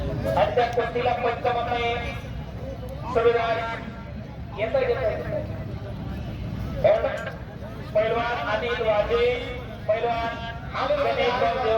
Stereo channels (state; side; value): identical; both; correlation 1.00